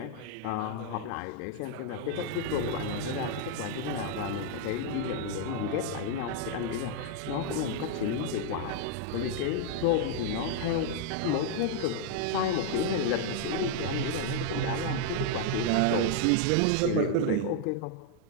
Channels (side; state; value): both; different; correlation 0.00